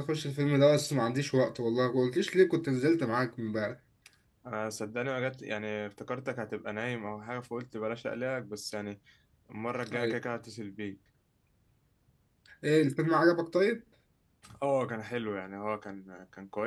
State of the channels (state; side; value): identical; both; correlation 1.00